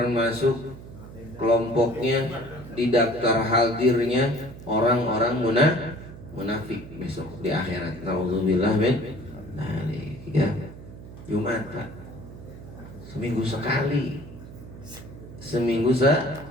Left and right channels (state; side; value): noise; right; hum, 15 dB below the sound